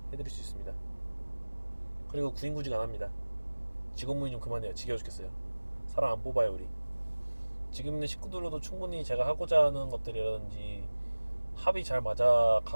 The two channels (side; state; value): both; inverted; correlation -1.00